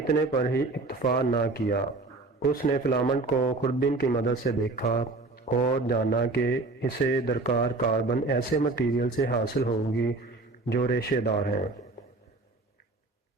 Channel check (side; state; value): left; quieter; 3.4 dB